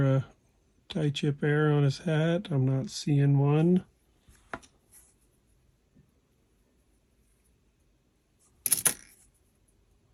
a tie chip error on his hat. I'm not seeing one.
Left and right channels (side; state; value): both; identical; correlation 1.00